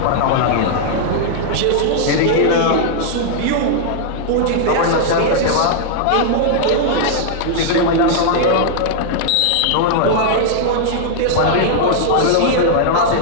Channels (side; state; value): both; different; correlation -0.01